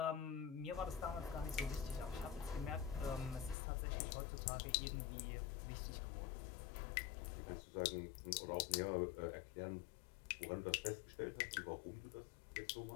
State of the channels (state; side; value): drops out; right; at 3.6 s